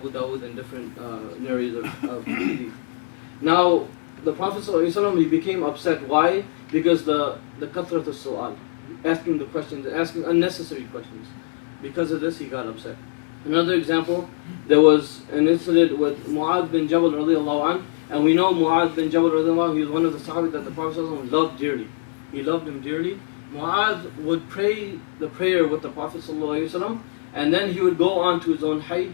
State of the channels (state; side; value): silent; right; 63 dB below the other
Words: Dawud, and different narrators of hadith. Now the Prophet ﷺ, he became upset. Why? Because the kathrat as-su'al, asking the questions, asking unnecessary questions. Because of this, he got upset. Another example, there was an incident with Mu'adh bin Jabal radiallahu anh, and we know Mu'adh bin Jabal radiallahu anh, he was one of the Sahabi that the Prophet ﷺ loved dearly. He loved him dearly. Mu'adh would pray the prayer with the Prophet ﷺ, and then he would go on to his own hayy,